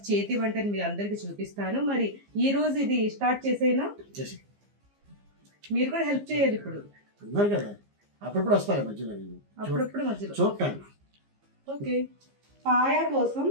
చేతి వంటని మీ అందరికి చూపిస్తాను. మరి ఈ రోజు ఇది స్టార్ట్ చేసేనా? మీరు కూడా హెల్ప్ చేయాలి. ఇప్పుడు కదా, అప్పుడప్పుడు వస్తాయి మధ్యలో, అప్పుడప్పుడు మధ్యలో చూడటాను. ఓకే, పాయ కోసం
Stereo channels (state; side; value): late; left; 15 ms